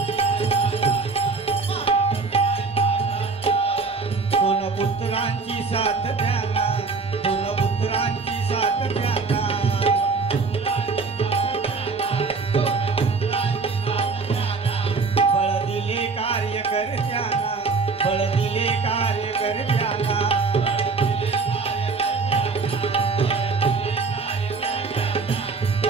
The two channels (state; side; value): quieter; left; 4.4 dB